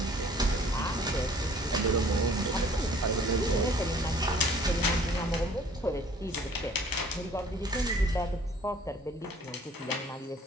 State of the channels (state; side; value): normal; both; correlation 0.53